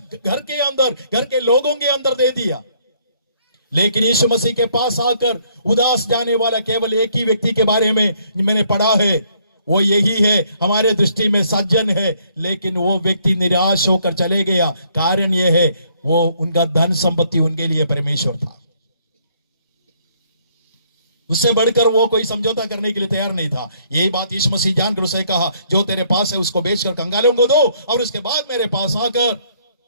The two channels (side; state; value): both; inverted; correlation -0.66